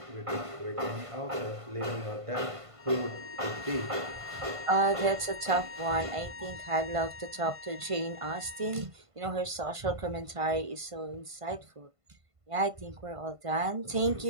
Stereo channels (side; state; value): left; late; 1.5 ms